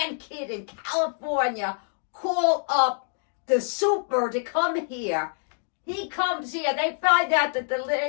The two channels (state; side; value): silent; right; 61 dB below the other